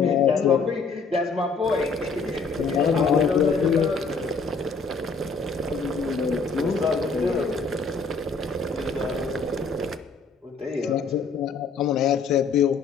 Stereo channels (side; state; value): right; quieter; 4.6 dB